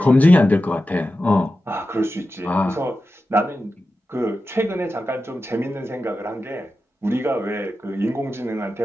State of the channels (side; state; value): both; normal; correlation 0.92